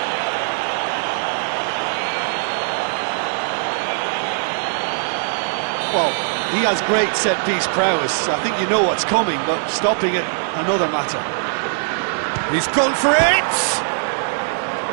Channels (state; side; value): silent; left; digital silence